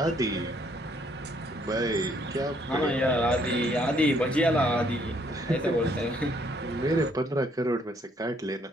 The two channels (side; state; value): both; normal; correlation 0.67